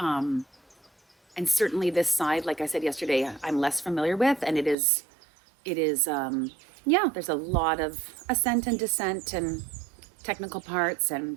And certainly this side, like I said yesterday, I'm less familiar with, and it is, yeah, there's a lot of ascent and descent and technical parts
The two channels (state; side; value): drops out; left; at 4.8 s